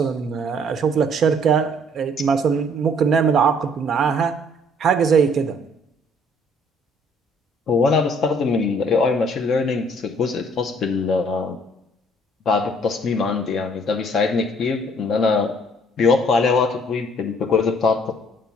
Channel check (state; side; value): normal; both; correlation 0.60